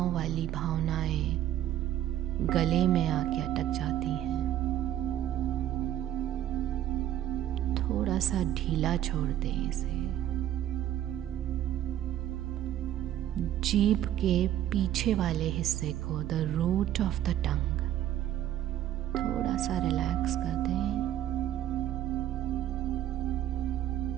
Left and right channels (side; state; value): left; quieter; 12.2 dB